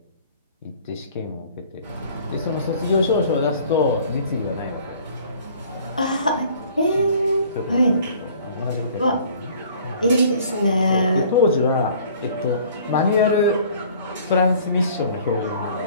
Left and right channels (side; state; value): both; inverted; correlation -0.52